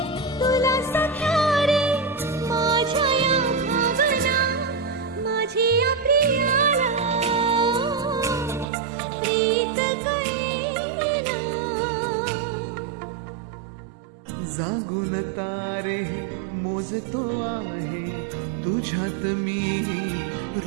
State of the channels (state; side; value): drops out; left; at 8.7 s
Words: तुला सख्या रे माझ्या या भावना माझी या प्रियाला प्रीत कळेना जागून तारे मोजतो आहे तुझ्यात मी